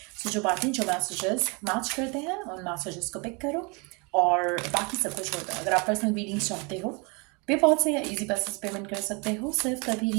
सो जो बातें जो मैसेजेस मैच करते हैं उन मैसेजेस को पिक करो और बाकी सब कुछ होता है। अगर आप पर्सनल रीडिंग्स चाहते हो, पेपॉल से या इजी पैसेज पेमेंट कर सकते हो। सिर्फ तभी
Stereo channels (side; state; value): left; quieter; 30.7 dB